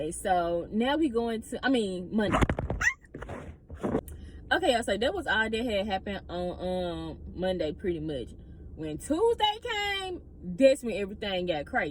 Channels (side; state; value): both; identical; correlation 1.00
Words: So now we going to, Monday. Okay, y'all. So that was all that had happened on Monday pretty much. When Tuesday came, that's when everything got